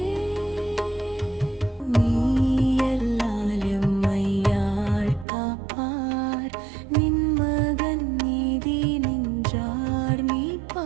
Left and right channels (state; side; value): drops out; left; at 5.2 s